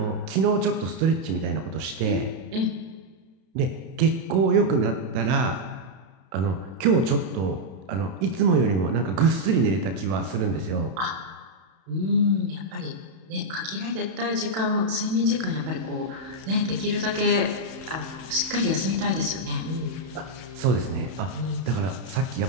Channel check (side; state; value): left; late; 32 ms